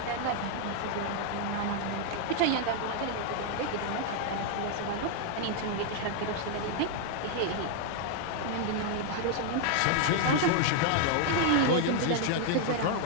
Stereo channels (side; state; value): both; different; correlation 0.00